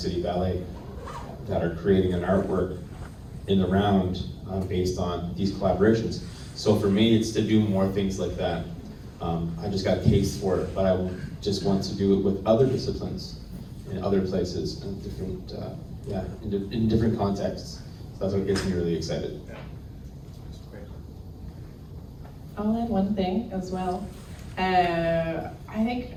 Ballet that are creating an artwork in the round based on these collaborations. So for me, it's to do more things like that. I just got a taste for it, but I just want to do it with other disciplines in other places and different, in different contexts. So that's what gets me really excited. I'll add one thing as well. I think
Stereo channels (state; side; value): identical; both; correlation 1.00